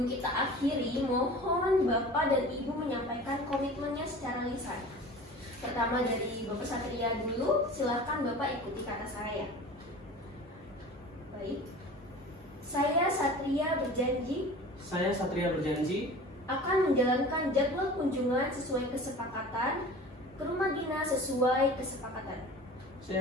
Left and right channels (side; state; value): both; normal; correlation 0.39